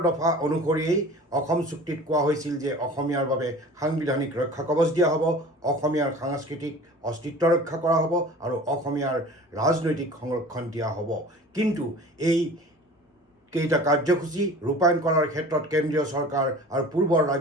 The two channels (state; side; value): normal; both; correlation 0.42